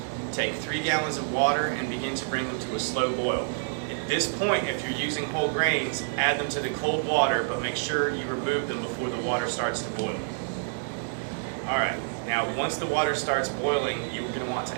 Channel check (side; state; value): left; silent; digital silence